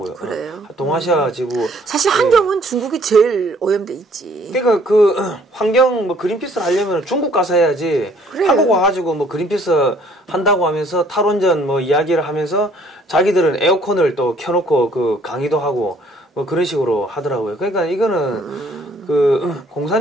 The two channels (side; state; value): both; normal; correlation 0.60